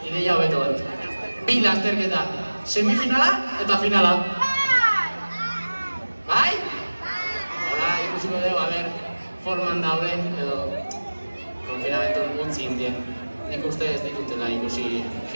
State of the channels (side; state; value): both; inverted; correlation -1.00